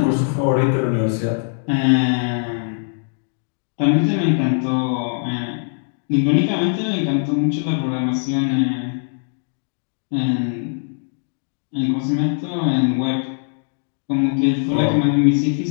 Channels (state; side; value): silent; right; digital silence